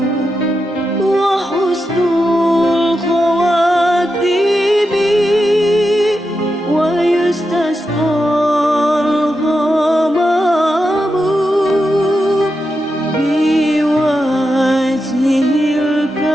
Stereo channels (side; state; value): both; normal; correlation 0.88